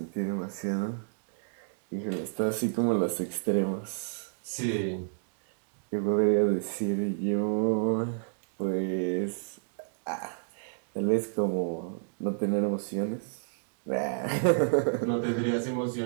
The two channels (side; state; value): left; silent; digital silence